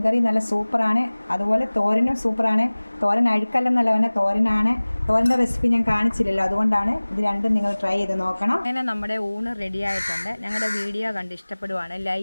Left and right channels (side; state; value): both; inverted; correlation -1.00